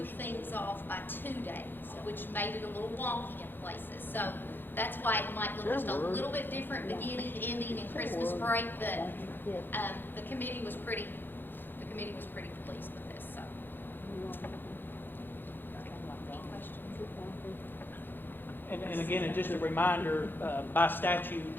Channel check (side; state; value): right; late; 0.097 ms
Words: things off by 2 days, which made it a little wonky in places. So that's why it might look just a little bit different beginning, ending, and Christmas break. But the committee was pretty pleased with this. So, any questions? And again, and just a reminder, by